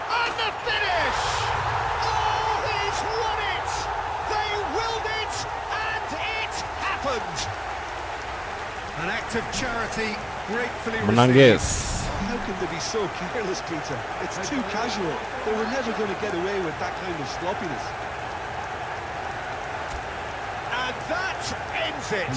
the finish! Oh, he's won it! They willed it, and it happened! An act of charity, gratefully Menang received. guys. How can they be so careless, Peter? It's too casual. They were never going to get away with that kind of sloppiness. And that ends it.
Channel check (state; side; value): identical; both; correlation 1.00